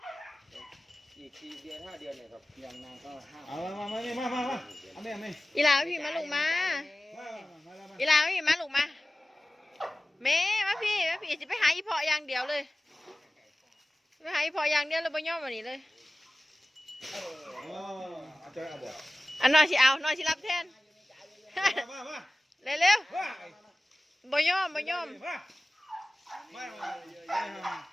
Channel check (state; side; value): normal; both; correlation 0.97